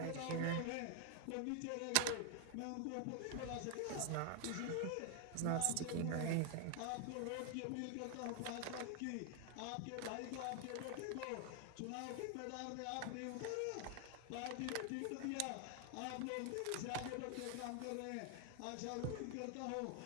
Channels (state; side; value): different; both; correlation 0.00